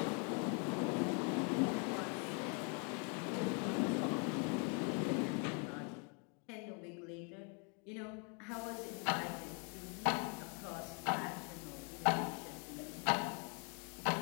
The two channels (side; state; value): right; quieter; 36.1 dB